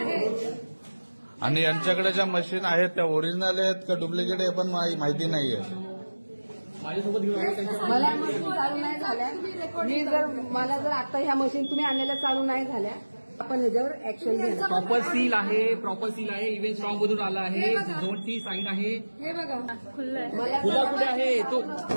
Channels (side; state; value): both; inverted; correlation -1.00